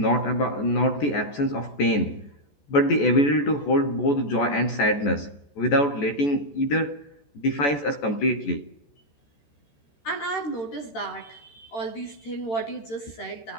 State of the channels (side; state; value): right; late; 14 ms